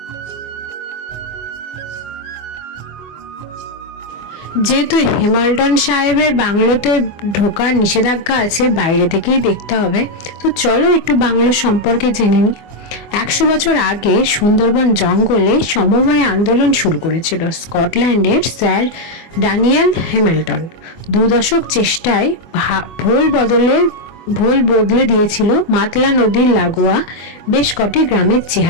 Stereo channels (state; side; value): late; right; 24 ms